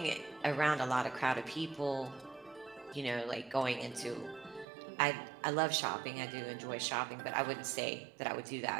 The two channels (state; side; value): drops out; left; at 4.7 s